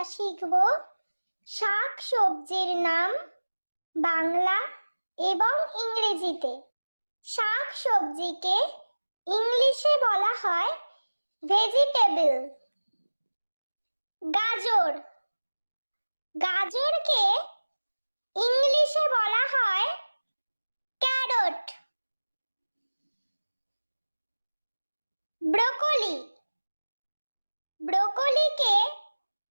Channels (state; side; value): inverted; both; correlation -1.00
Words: শিখব শাক সবজির নাম বাংলা এবং ইংরেজিতে। শাক সবজিকে ইংলিশে বলা হয় ভেজিটেবল। গাজর, গাজরকে ইংলিশে বলা হয় ক্যারট। ব্রোকলি, ব্রোকলিকে